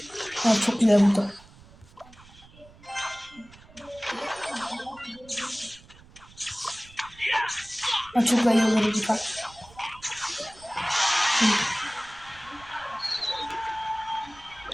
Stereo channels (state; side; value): noise; right; rumble, 23 dB below the sound